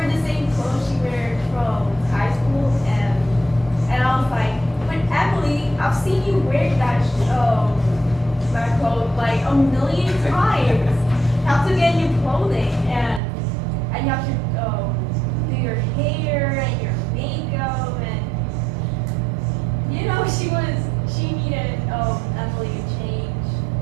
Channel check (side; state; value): left; drops out; at 13.2 s